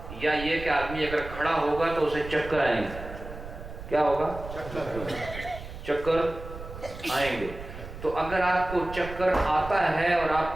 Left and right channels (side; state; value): right; noise; rumble, 12 dB below the sound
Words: یا یہ کہ آدمی اگر کھڑا ہوگا تو اسے چکر آئیں گے۔ کیا ہوگا؟ چکر آئیں گے۔ تو اگر آپ کو چکر آتا ہے اور